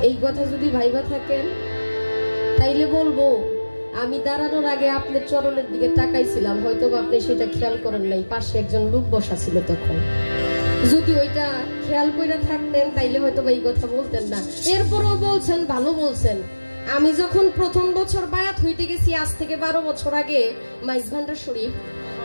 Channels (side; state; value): both; inverted; correlation -1.00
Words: এই কথা যদি ভাইবা থাকেন তাইলে বলবো আমি দাঁড়ানোর আগে আপনার চরণের দিকে তাকাইছিলাম, হয়তো আপনি সেটা খেয়াল করেন নাই, পাশে একজন লোক বসা ছিল তখন। যদি ওইটা খেয়াল করে থাকতেন তাইলে হয়তো এই কথা বলতেন না। এরপরও বলছেন, ভালো বলছেন। আমি যখন প্রথম বছর বায়াত হইতে গেছি, আজ থেকে 12 বছর আগে, মাইজভান্ডার শরীফ,